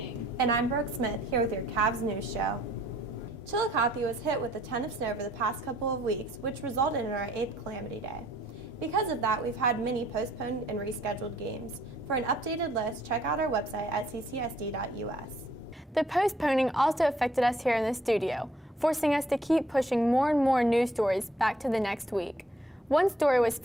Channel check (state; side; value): normal; both; correlation 0.64